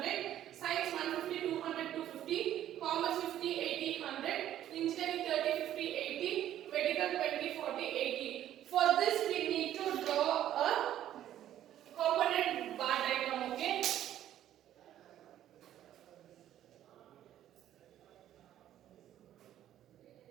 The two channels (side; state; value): left; quieter; 11.9 dB